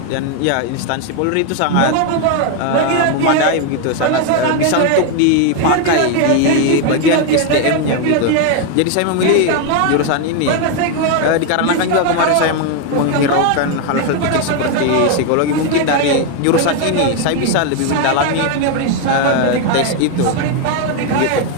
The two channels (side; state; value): both; different; correlation 0.01